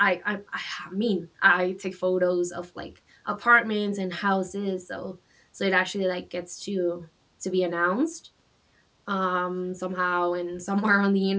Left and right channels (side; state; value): both; identical; correlation 1.00